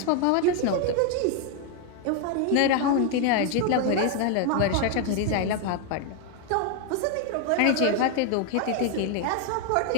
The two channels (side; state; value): both; different; correlation 0.01